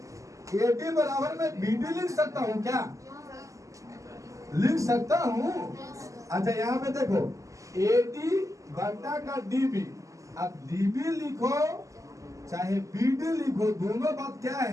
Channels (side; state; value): left; late; 0.16 ms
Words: बराबर में BD लिख सकता हूँ क्या? लिख सकता हूँ। अच्छा, यहाँ पे देखो AD बटा का DB, अब DB लिखो चाहे BD लिखो, दोनों बात क्या